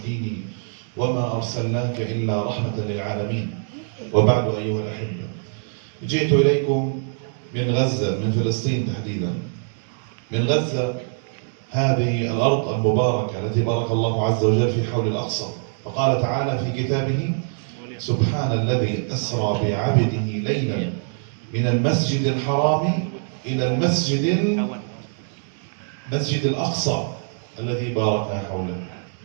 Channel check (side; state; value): left; silent; 63 dB below the other